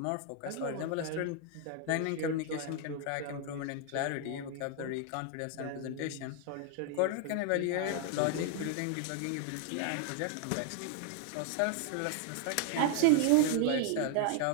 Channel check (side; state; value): both; different; correlation 0.00